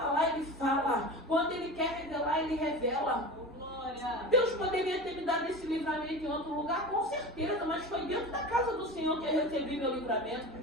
Ele fala. Quando Ele quer revelar, Ele revela. Deus poderia ter me dado esse livramento em outro lugar, com certeza, mas foi dentro da casa do Senhor que eu recebi meu livramento,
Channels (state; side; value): noise; right; rumble, 26 dB below the sound